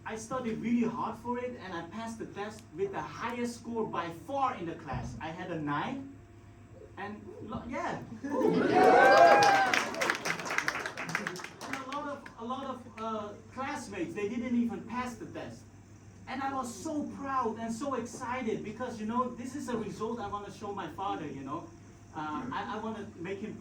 I studied really hard for it, and I passed the test with the highest score by far in the class. I had a 9. And yeah, and a lot of classmates, they didn't even pass the test. And I was so proud and so excited because, you know, this is a result I want to show my father, you know. I want to make him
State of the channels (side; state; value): both; identical; correlation 1.00